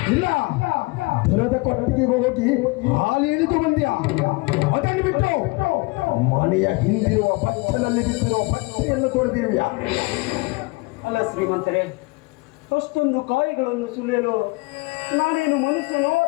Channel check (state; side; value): quieter; right; 26.4 dB